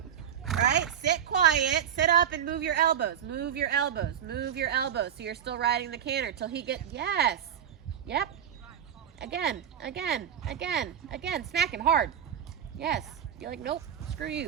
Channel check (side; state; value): left; quieter; 9.0 dB